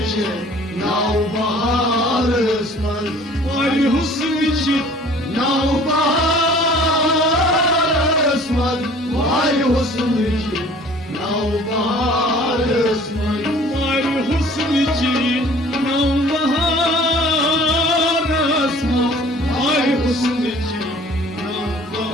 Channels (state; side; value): normal; both; correlation 0.50